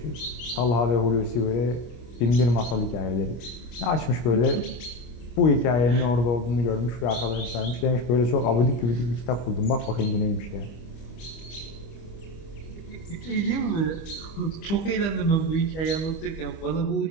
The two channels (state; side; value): late; right; 25 ms